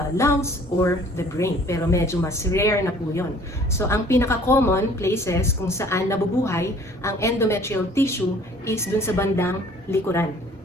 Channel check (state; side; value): normal; both; correlation 0.53